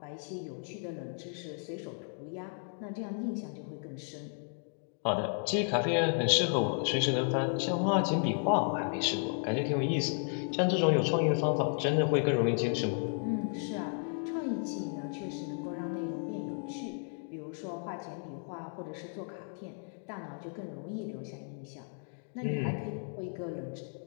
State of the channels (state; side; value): silent; right; 55 dB below the other